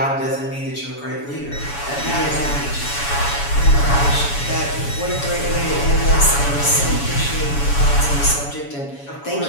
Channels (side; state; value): right; late; 7.1 ms